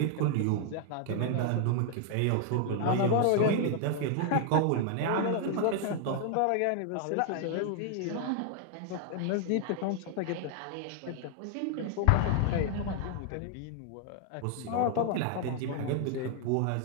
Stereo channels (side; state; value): both; different; correlation 0.00